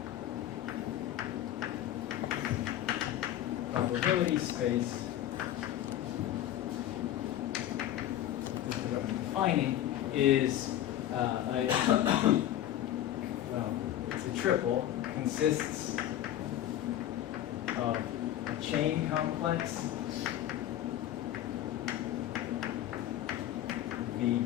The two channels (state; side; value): quieter; right; 12.3 dB